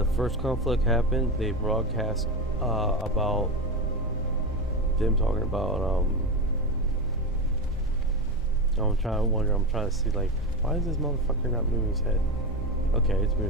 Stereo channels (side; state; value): both; normal; correlation 0.19